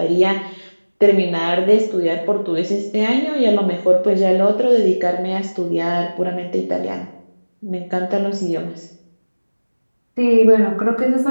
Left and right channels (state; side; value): inverted; both; correlation -1.00